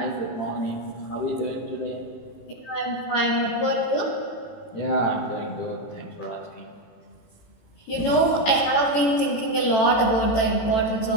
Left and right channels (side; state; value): right; late; 18 ms